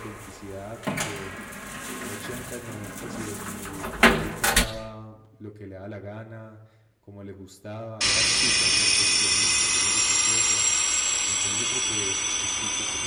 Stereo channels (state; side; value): identical; both; correlation 1.00